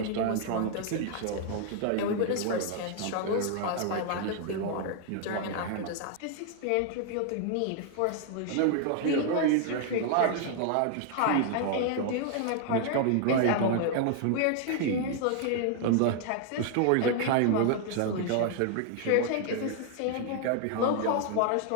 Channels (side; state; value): both; different; correlation 0.00